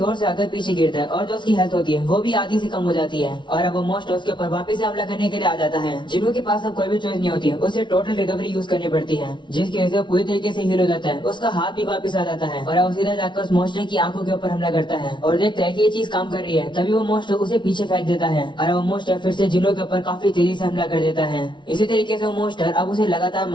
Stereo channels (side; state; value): right; late; 0.23 ms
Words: से आकर पीछे गिरता है और जो उसकी हेल्थ होती है वो भी आधी से कम हो जाती है और अब वो मोस्ट उसके ऊपर वापस से हमला करने के लिए आ जाता है। जिन्हो के पास अब कोई भी चॉइस नहीं होती है, उसे टोटल रिकवरी यूज करनी पड़ती है, जिसकी वजह से पूरी तरीके से हील हो जाता है। उसका हाथ भी वापस आ जाता है और अब सीधा जाकर उस मोस्टर की आंखों के ऊपर हमला करता है और देखता है कि ये चीज काम कर रही है। तभी वो मोस्टर उसे पीछे फेंक देता है और वो मोस्टर फिर से जिन्हो के ऊपर काफी तेजी से हमला कर देता है। इसी तरीके से वो मोस्टर अब उसे लगातार